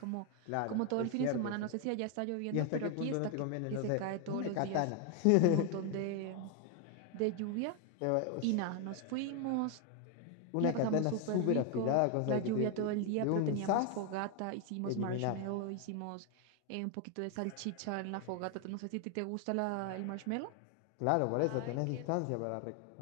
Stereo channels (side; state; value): both; different; correlation 0.01